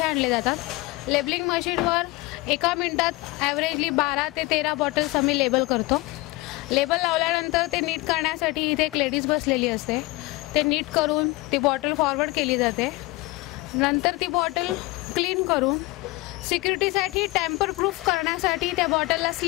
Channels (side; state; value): right; quieter; 22.0 dB